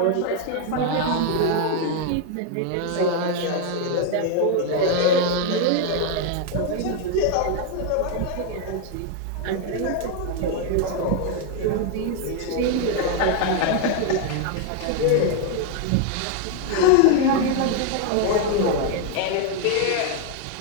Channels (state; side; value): different; both; correlation 0.00